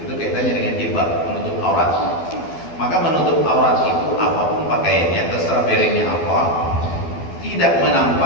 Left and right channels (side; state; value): right; late; 12 ms